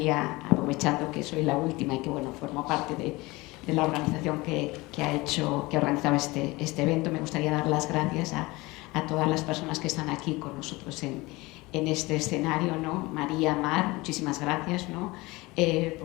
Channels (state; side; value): quieter; right; 22.2 dB